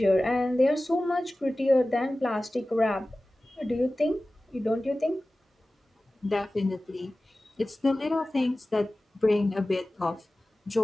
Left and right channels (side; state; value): both; normal; correlation 0.96